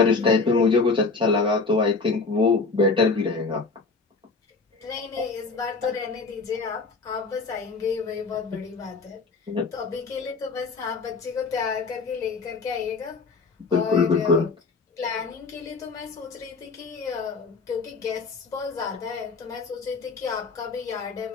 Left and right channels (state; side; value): quieter; right; 4.2 dB